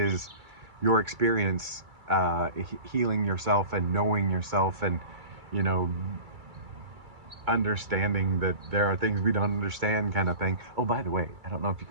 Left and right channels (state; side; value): late; left; 2.3 ms